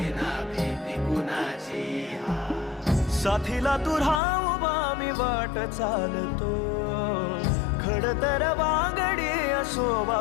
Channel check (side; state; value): right; drops out; at 4.2 s